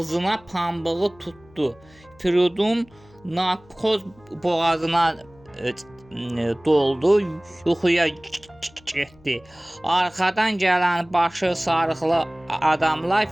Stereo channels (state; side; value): noise; left; hum, 27 dB below the sound